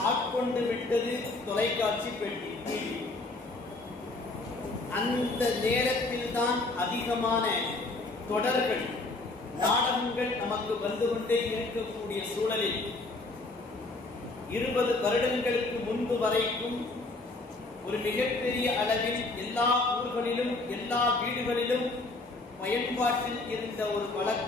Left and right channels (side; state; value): right; quieter; 3.2 dB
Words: ஆட்கொண்டு விட்டது தொலைக்காட்சி பெட்டி, டிவி. அந்த நேரத்தில் தான் அதிகமான தொடர்கள், நாடகங்கள் நமக்கு வந்து கொண்டே இருக்கக்கூடிய சூழலில் 20 வருடங்களுக்கு முன்பு வரைக்கும் ஒரு மிகப்பெரிய அளவில் எல்லா ஊர்களிலும் எல்லா வீடுகளிலும் பயன்பாட்டில் இருந்த ஒரு